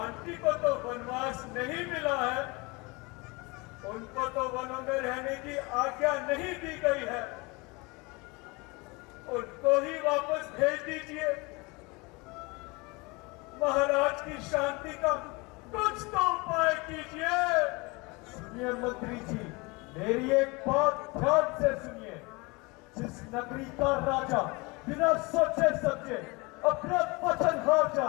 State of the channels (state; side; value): quieter; right; 26.3 dB